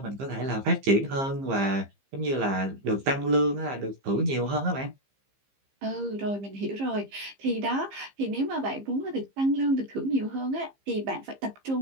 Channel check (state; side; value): late; left; 15 ms